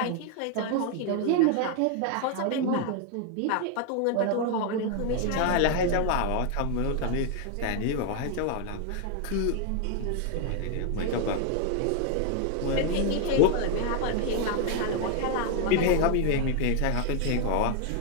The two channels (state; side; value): different; both; correlation 0.01